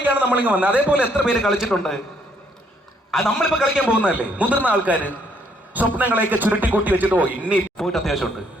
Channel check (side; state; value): both; normal; correlation 0.68